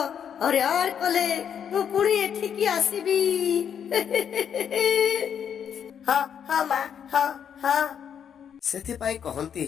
ହଇରାଣ କଲେ ମୁଁ ପୁଣି ଏଠିକି ଆସିବି। ହଁ ହଁ ମା, ହଁ ହଁ। ସେଥିପାଇଁ କହନ୍ତି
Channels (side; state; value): right; quieter; 8.2 dB